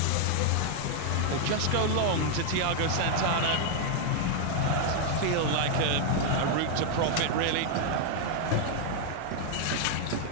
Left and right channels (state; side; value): different; both; correlation 0.00